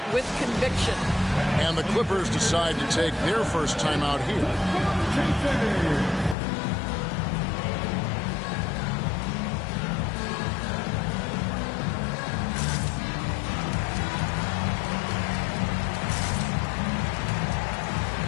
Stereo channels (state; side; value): drops out; right; at 6.4 s